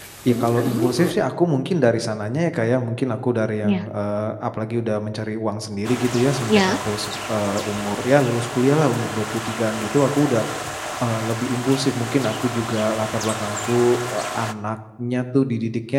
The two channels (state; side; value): identical; both; correlation 1.00